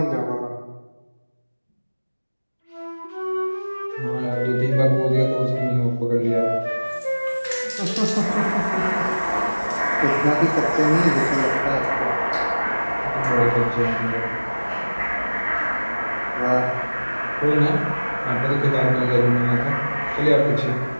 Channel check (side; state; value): both; inverted; correlation -1.00